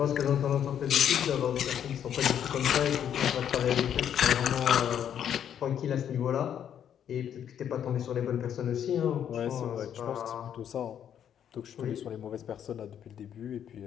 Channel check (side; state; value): right; quieter; 9.3 dB